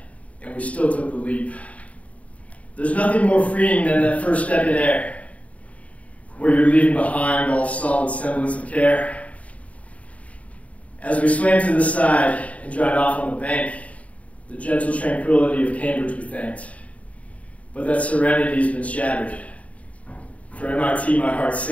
and we still took the leap. There's nothing more freeing than that first step in air, where you're leaving behind all solid semblance of care. As we swam to the side and dried off on the bank, the gentle tranquility of Cambridge we thanked. But that serenity's been shattered. For MIT, my heart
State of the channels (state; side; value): late; right; 0.067 ms